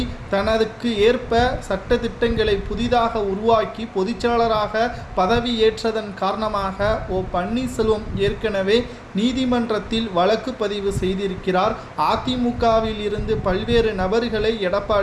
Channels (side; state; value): both; identical; correlation 1.00